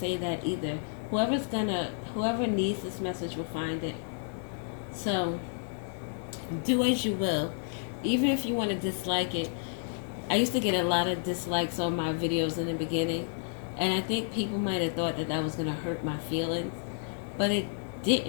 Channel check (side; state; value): right; silent; digital silence